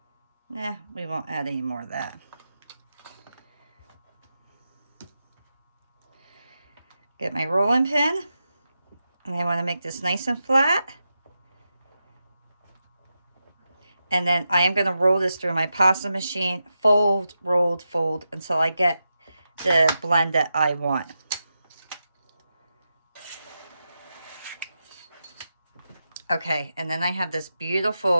we won't add any more of that. Get my rolling pin, and I want to make this nice and flat. And then I am going to roll this through my pasta machine, fold, rolled, fold, until I get the blend that I want. Okay, and then I have this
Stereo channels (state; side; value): inverted; both; correlation -0.89